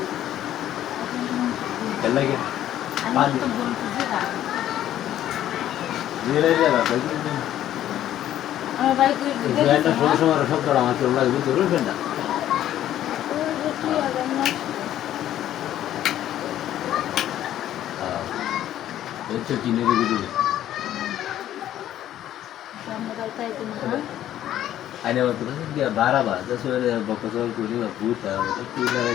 चल लगे धीरे धीरे बात এটা ষোলো সময় সপ্তাহ আমার চলে লাগবে তো রুফেন না হচ্ছে চিনের ভিতরে आने वाला तो क्या 12 बार 10 वाले बकचोल को नहीं भूत है वो तो लगा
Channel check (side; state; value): right; quieter; 12.1 dB